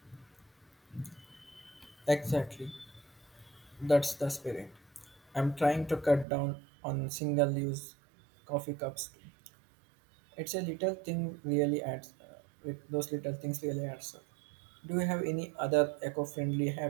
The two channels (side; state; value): left; drops out; at 6.2 s